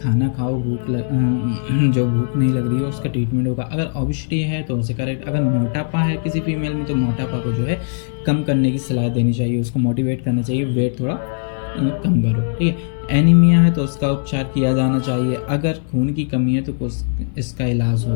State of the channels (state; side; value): silent; right; digital silence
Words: खाओ, जो भूख नहीं लग रही है उसका ट्रीटमेंट होगा। अगर ओबेसिटी है तो उसे करेक्ट, अगर मोटापा है किसी फीमेल में तो मोटापा को जो है कम करने की सलाह देनी चाहिए, उसको मोटिवेट करना चाहिए वेट थोड़ा कम करो, ठीक है। एनीमिया है तो उसका उपचार किया जाना चाहिए। अगर खून की कमी है तो कुछ इसका इलाज